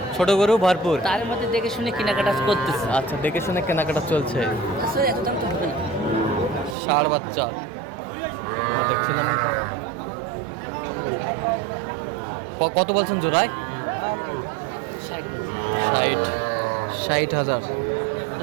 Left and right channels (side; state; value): left; drops out; at 6.8 s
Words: ছোট গরু ভরপুর, তার মধ্যে দেখে শুনে কেনাকাটা করতেছে। আচ্ছা, দেখে শুনে কেনাকাটা চলছে। আসলে এত দাম তো হবে না। ষাঁড় বাচ্চা দেখছিলাম এখানে। কত বলছেন জোড়ায়? 60,000।